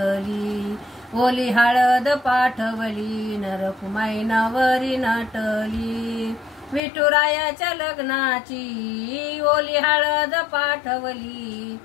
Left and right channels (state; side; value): drops out; right; at 6.8 s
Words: ओली हळद पाठवली, नरकुमाई नवरी नटली, विठुरायाच्या लग्नाची ओली हळद पाठवली,